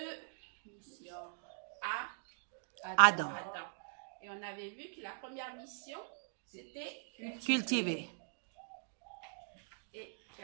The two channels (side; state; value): left; silent; digital silence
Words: missions à Adam. Et on avait vu que la première mission, c'était Cultiver. Et